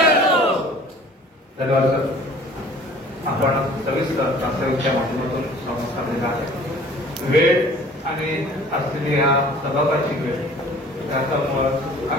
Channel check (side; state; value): both; normal; correlation 0.49